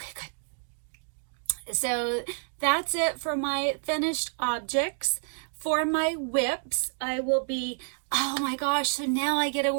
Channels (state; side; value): silent; left; digital silence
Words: good. So that's it for my finished objects. For my WIPS, I will be, oh my gosh, so now I get to